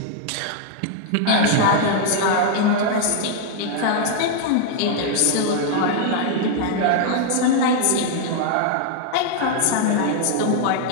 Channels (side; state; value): both; different; correlation 0.00